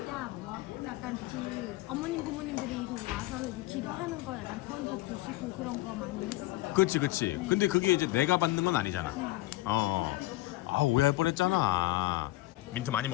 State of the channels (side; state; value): right; quieter; 18.3 dB